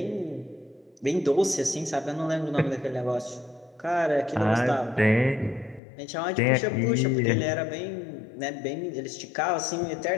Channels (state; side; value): drops out; right; at 5.8 s